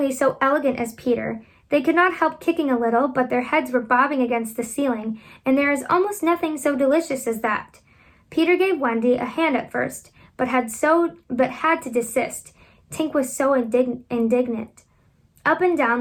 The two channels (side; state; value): both; identical; correlation 1.00